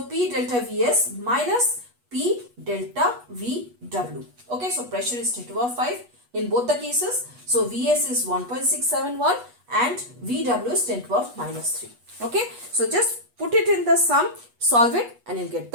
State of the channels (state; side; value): late; left; 8.2 ms